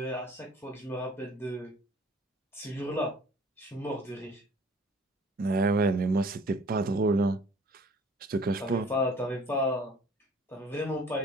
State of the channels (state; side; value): normal; both; correlation 0.52